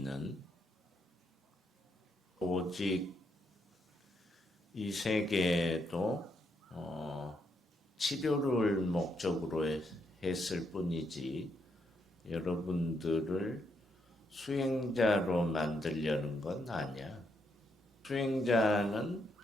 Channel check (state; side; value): normal; both; correlation 0.78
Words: 오직 이 세계에도 치료를 목적으로 했을 뿐이지 여러분들을 수행자로 만들려는 건 아니야. 수행자는